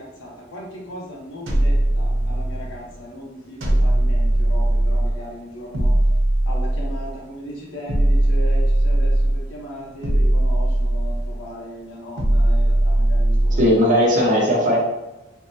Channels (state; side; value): normal; both; correlation 0.84